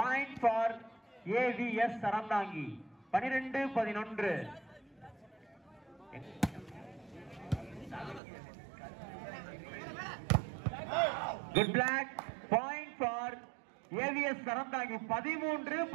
for AVS Sarandangi. 12-11. Good black. Point for AVS Sarandangi.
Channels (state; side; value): drops out; left; at 8.2 s